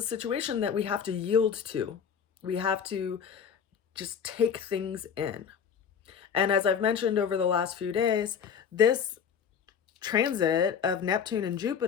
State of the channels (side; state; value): right; quieter; 7.4 dB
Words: situation that we have to yield to. We have to just take things in. And as I've mentioned over the last few days, this transit of Neptune and